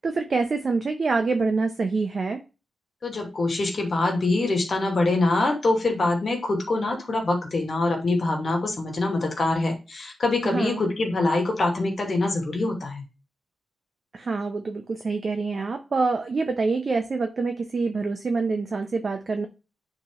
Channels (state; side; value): normal; both; correlation 0.88